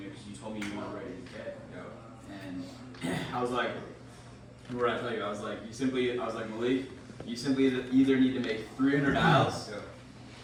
know, because you told me you want to raise a kid. And I was like, what did I tell you? I was like, Maliik, you simply either need to make 300 dials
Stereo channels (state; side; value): identical; both; correlation 1.00